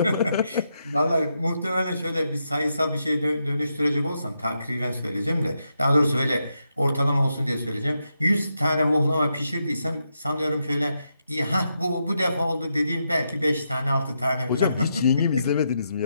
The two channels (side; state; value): both; inverted; correlation -0.83